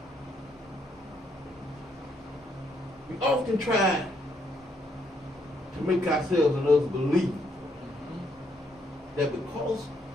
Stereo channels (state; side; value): normal; both; correlation 0.73